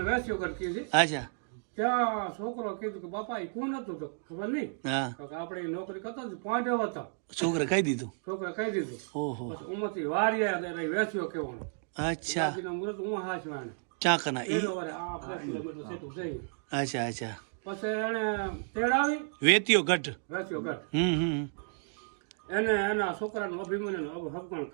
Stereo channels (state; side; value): silent; left; 56 dB below the other